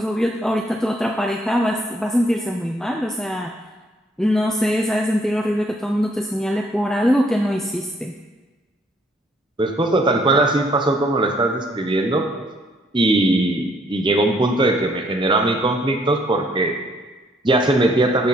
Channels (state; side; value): normal; both; correlation 0.67